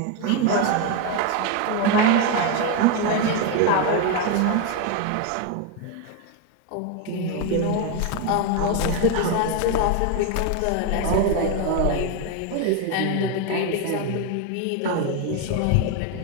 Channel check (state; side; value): different; both; correlation 0.02